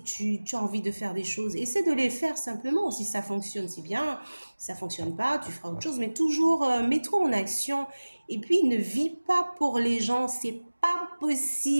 tu as envie de faire des choses, essaie de les faire simplement. Si ça fonctionne, c'est bien. Si ça fonctionne pas, tu feras autre chose. Mais toujours, mets-toi en action. Et puis, ne vis pas pour les gens. C'est pas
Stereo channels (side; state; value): both; inverted; correlation -1.00